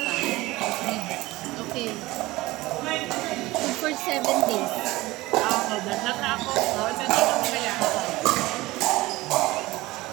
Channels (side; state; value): left; quieter; 19.4 dB